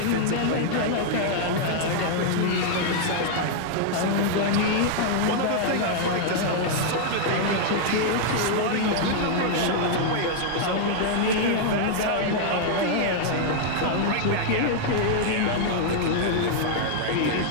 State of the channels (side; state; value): both; different; correlation -0.01